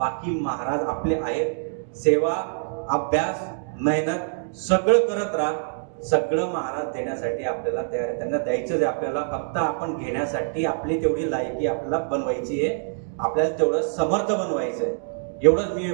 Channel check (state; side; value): silent; left; digital silence